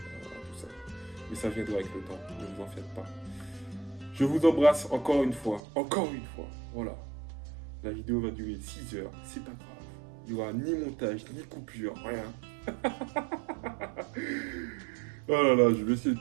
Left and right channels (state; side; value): drops out; left; at 5.6 s